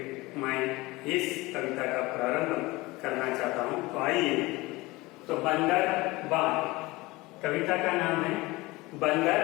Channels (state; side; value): quieter; right; 21.5 dB